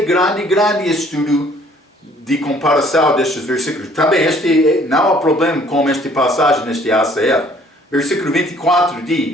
grande estudo de comparação destes versículos. Também não há problema com esta passagem neste ACF. Versículo 24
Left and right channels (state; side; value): normal; both; correlation 0.58